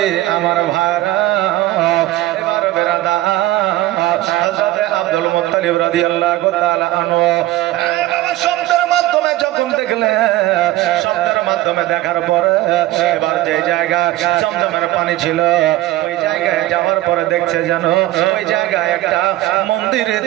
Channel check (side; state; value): left; quieter; 16.0 dB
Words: আমার ভাইরা এবার বেরাদা হযরত আব্দুল মুত্তালিব রাদিয়াল্লাহু তাআলা আনহু শব্দের মাধ্যমে যখন দেখলেন, শব্দের মাধ্যমে দেখার পরে এবার যে জায়গা জমজমের পানি ছিল ওই জায়গায় যাওয়ার পরে দেখছে যেন ওই জায়গায় একটা মন্দির